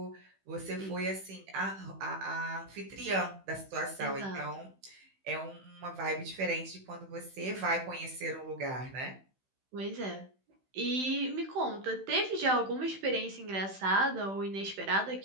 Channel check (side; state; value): left; late; 16 ms